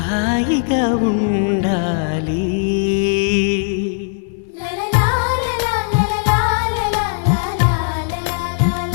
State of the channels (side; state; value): right; silent; 62 dB below the other